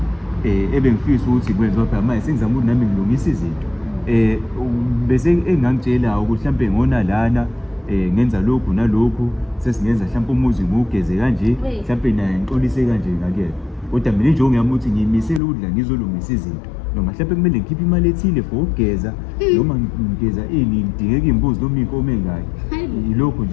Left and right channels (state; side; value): drops out; right; at 15.4 s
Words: ebengifisa ukuthi kwenziwa phela manje sengizama ukuthi nami ngilungisa izinto bese engangitshela ukuthi mhlambe ngona lana ngenza lokhu nalokhu sesingenza mhlambe umuzi ngugeze kanje mhlambe naye ngixolise kanje ngakhe kodwa mina injongo yami ukuthi ngiyimisela ukudla ngizolungisa izinto noma mhlambe kumele ngikhiphe imali ethile for ukugeza noma ngigeza ngidingeka imbuzi noma inkomo engayo yilokho